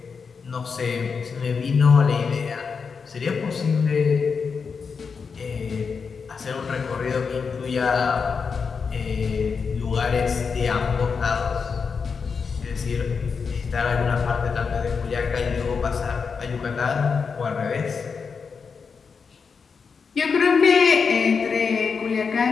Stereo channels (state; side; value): quieter; right; 5.5 dB